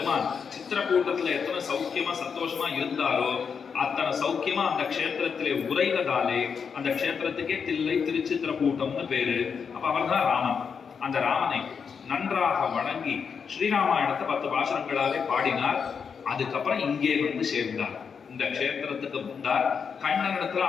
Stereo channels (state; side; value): quieter; right; 6.3 dB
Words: சித்திரக்கூட்டத்துல எத்தனை சௌக்கியமா சந்தோஷமா இருந்தாரோ அத்தனை சௌக்கியமா அந்த க்ஷேத்திரத்திலே உரைவதாலே அந்த க்ஷேத்திரத்துக்கே தில்லை திருச்சித்திரகூட்டம்னு பேரு. அப்ப அவர் தான் ராமன். அந்த ராமனை நன்றாக வணங்கி ஸ்ரீராமாயணத்தை 10 பாசுரங்களாலே பாடினார். அதுக்கப்புறம் இங்கே வந்து சேர்ந்தார். இந்த க்ஷேத்திரத்துக்கு வந்தார். கண்ணனிடத்துல